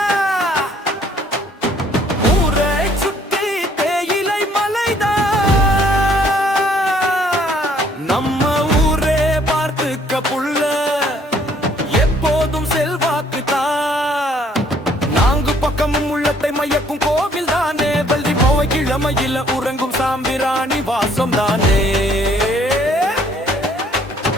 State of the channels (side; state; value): both; normal; correlation 0.62